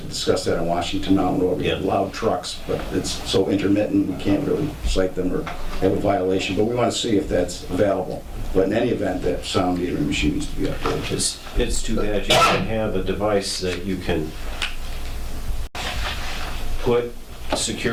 discussed that in Washington Mountain Road. We have loud trucks, but it's so intermittent we can't really cite them or have a violation. But we want to see if that's available. But in any event, that sound metering machine needs to be upgraded. It's too bad you can have a device that you can put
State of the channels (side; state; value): both; identical; correlation 1.00